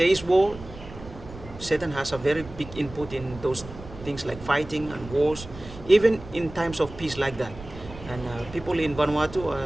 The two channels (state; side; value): noise; right; rumble, 15 dB below the sound